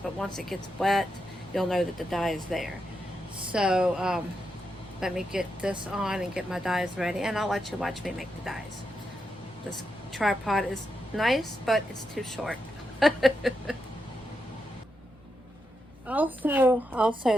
but once it gets wet, you'll know that the dye is there. So let me get this on and get my dyes ready, and I'll let you watch me make the dyes. This tripod is nice, but it's too short.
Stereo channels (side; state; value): both; normal; correlation 0.85